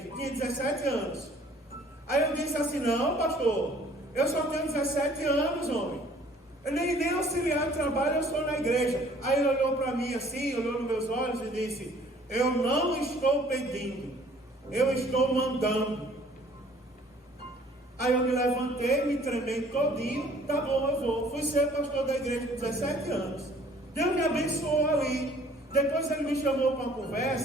Tinha 17 anos. Aí eu disse assim, não, pastor, eu só tenho 17 anos, homem. Eu nem auxiliar de trabalho eu sou na igreja. Aí ele olhou para mim assim, olhou nos meus olhos e disse, eu não estou pedindo, eu estou mandando. Aí eu me levantei, me tremei todinho, tá bom, eu vou. Fui ser pastor da igreja com 17 anos. Deus me abençoou ali. Depois ele me chamou para uma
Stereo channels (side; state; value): both; normal; correlation 0.56